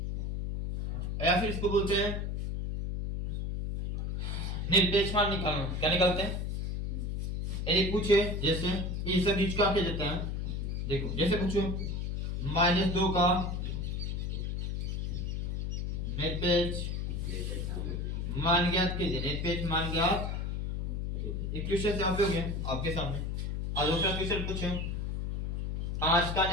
या फिर इसको बोलते हैं निरपेक्ष मान निकालना। क्या निकालते हैं, यदि पूछे जैसे ये सब बीच का क्या देता है, देखो जैसे पूछो -2 का निरपेक्ष मान ज्ञात कीजिए, निरपेक्ष मान ज्ञात। एक क्वेश्चन से आप हो गया आपके सामने। और दूसरा क्वेश्चन पूछो 5 का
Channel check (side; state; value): left; noise; hum, 2 dB below the sound